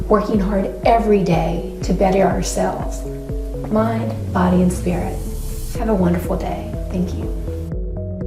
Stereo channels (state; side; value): identical; both; correlation 1.00